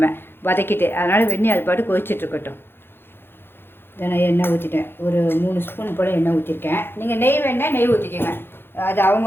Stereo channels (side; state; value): right; late; 0.10 ms